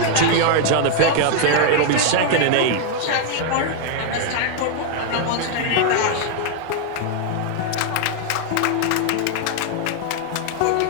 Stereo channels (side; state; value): both; different; correlation 0.00